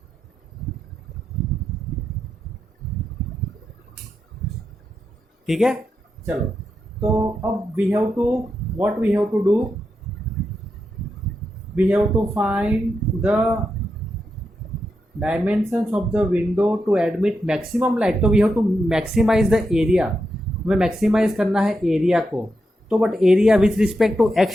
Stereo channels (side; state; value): both; normal; correlation 0.86